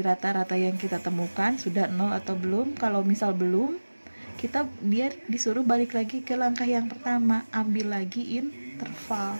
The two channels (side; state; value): both; inverted; correlation -1.00